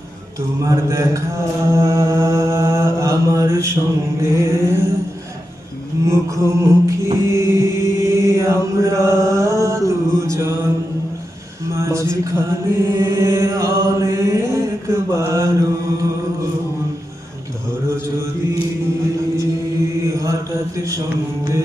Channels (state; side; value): normal; both; correlation 0.89